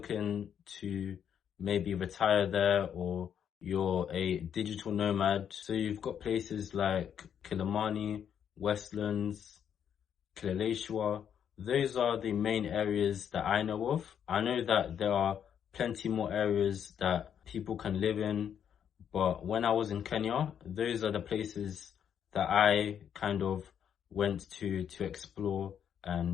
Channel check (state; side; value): quieter; right; 8.6 dB